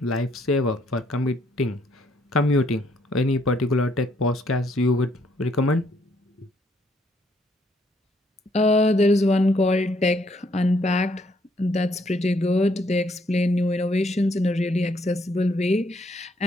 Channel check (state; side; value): normal; both; correlation 0.69